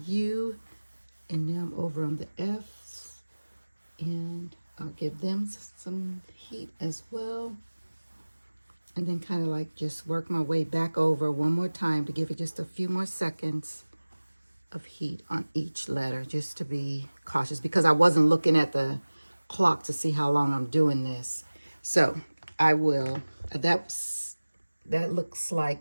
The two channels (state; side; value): inverted; both; correlation -1.00